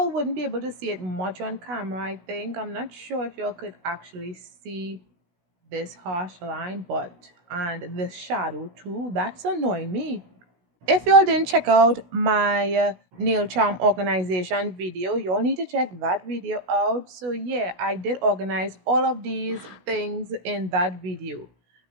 wouldn't be able to see it much on camera, I think. I'm not sure if y'all could actually see this harsh line, and this shadow too, that's annoying me. If y'all didn't check out my nail charm organization video, y'all need to check that video out. So yeah, I did organize all of these things in that video.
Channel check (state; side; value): late; left; 16 ms